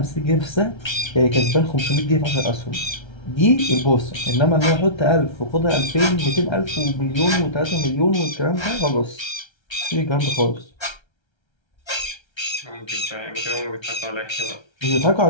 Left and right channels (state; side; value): late; right; 1.3 ms